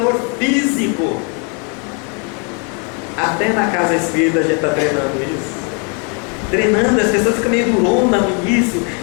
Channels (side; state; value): right; quieter; 36.8 dB